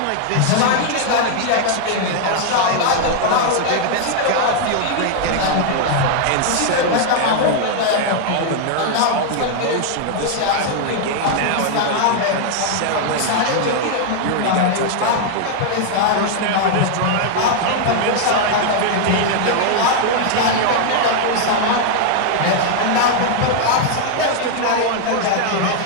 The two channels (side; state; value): both; different; correlation 0.00